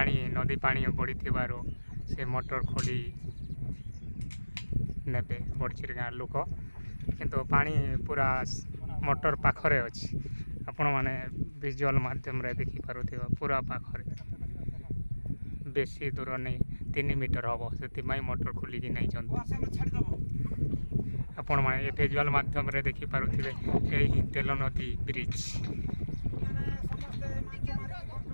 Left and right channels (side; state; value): both; inverted; correlation -1.00